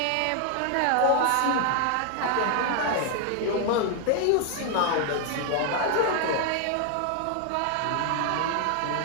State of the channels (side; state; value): both; different; correlation 0.00